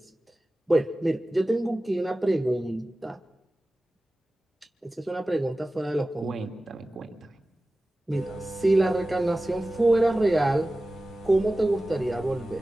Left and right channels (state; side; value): normal; both; correlation 0.96